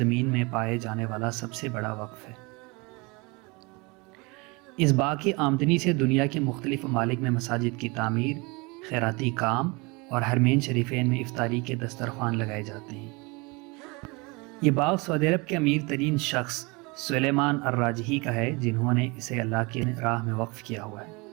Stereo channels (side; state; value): left; quieter; 27.1 dB